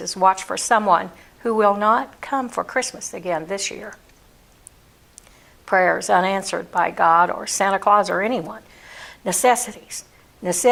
watch for someone who will not come for Christmas again this year. Prayers unanswered by God or Santa Claus or anyone. Necessities.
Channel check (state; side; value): identical; both; correlation 1.00